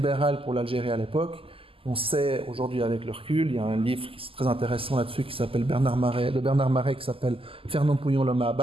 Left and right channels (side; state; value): left; late; 0.26 ms